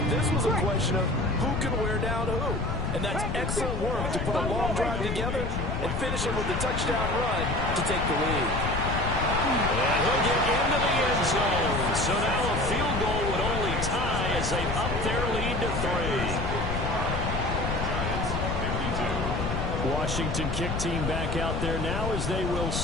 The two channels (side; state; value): left; noise; rumble, 2 dB below the sound